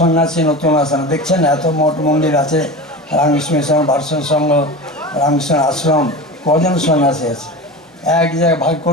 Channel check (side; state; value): both; normal; correlation 0.29